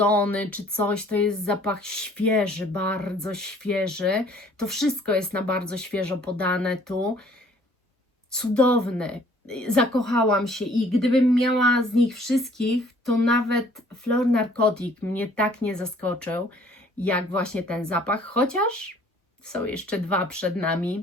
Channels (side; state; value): both; normal; correlation 0.57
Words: czy coś, to jest zapach świeży, bardzo świeży. To wszystko jest na bardzo świeżo podane tu. Cudowny. Zakochałam się i gdybym miała z nich wszystkich, to nawet Fleur Narcotic mnie tak nie zaskoczył, jak właśnie ten zapach, chociaż są jeszcze dwa przed nami,